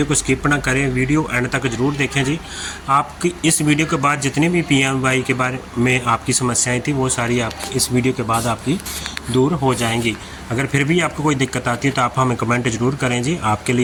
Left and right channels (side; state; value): both; identical; correlation 1.00